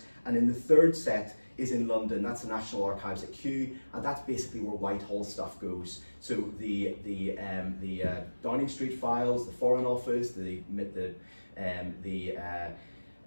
And in the third set is in London. That's the National Archives at Kew, and that's basically where Whitehall stuff goes. So the Downing Street files, the Foreign Office, the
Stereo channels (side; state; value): both; inverted; correlation -1.00